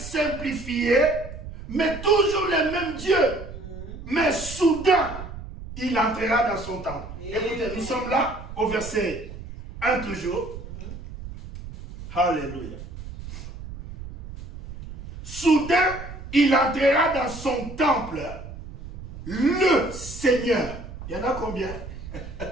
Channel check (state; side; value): noise; right; rumble, 12 dB below the sound